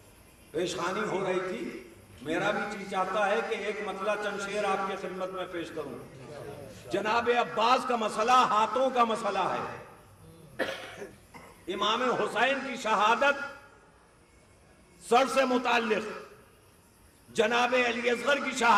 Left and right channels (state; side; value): identical; both; correlation 1.00